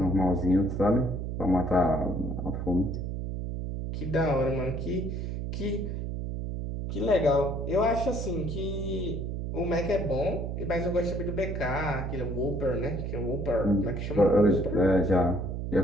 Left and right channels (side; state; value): right; noise; hum, 4 dB below the sound